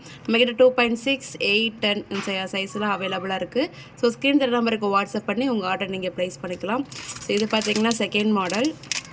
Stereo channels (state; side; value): identical; both; correlation 1.00